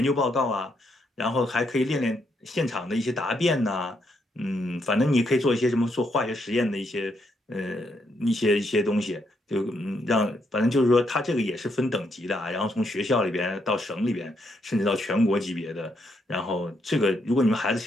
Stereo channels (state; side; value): normal; both; correlation 0.77